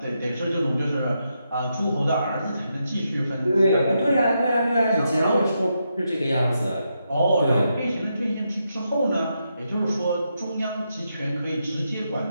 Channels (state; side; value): inverted; both; correlation -0.83